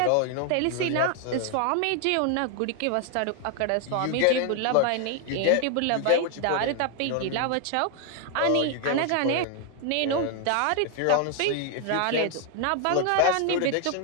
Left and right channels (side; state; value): both; different; correlation 0.00